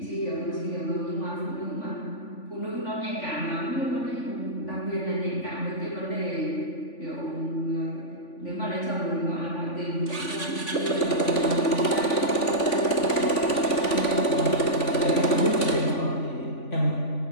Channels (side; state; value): right; late; 3.5 ms